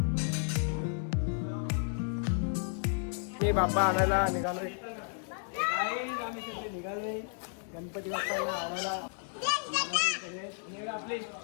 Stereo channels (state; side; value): silent; right; 56 dB below the other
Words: मी बाप्पा आणायला निघालोय. निघाले गणपती बाप्पाला आणायला. आपली